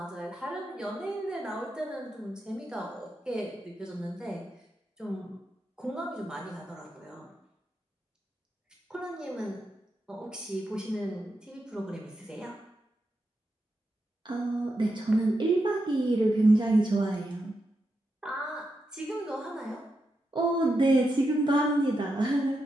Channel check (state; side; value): normal; both; correlation 0.86